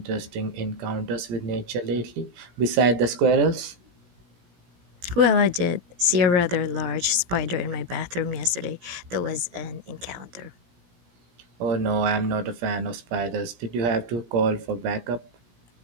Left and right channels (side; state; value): left; late; 17 ms